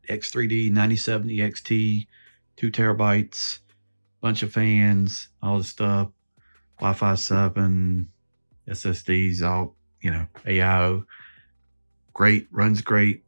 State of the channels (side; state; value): both; inverted; correlation -1.00